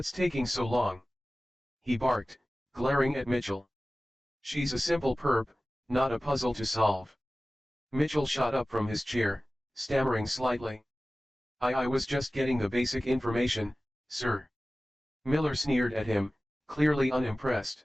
taking so long?" he barked, glaring at Mitchell. "She's a simple perp, not a puzzle to solve." Mitchell shot up from his chair, stammering slightly. I was just getting the basic information, sir." Miller sneered at him, clearly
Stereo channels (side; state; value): both; normal; correlation 0.97